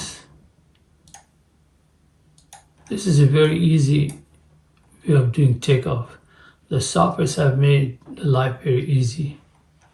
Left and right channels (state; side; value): identical; both; correlation 1.00